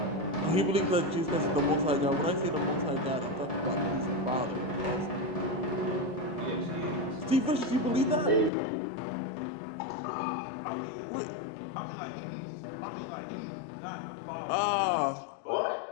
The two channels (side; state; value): right; drops out; at 8.5 s